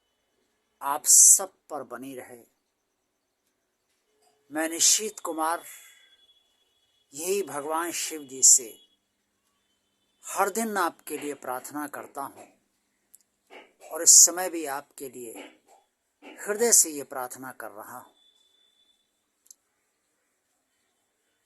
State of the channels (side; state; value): both; identical; correlation 1.00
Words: आप सब पर बनी रहे। मैं निशीत कुमार यही भगवान शिव जी से हर दिन आपके लिए प्रार्थना करता हूँ और इस समय भी आपके लिए हृदय से ये प्रार्थना कर रहा हूँ।